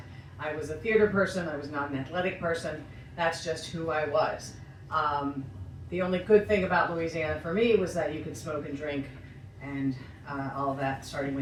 I was a theater person. I was not an athletic person. That's just who I was. The only good thing about Louisiana for me was that you could smoke and drink and all of that starting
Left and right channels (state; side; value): identical; both; correlation 1.00